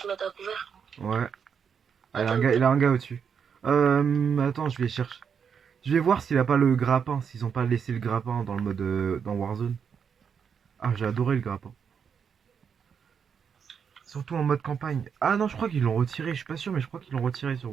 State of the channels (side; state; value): left; quieter; 6.9 dB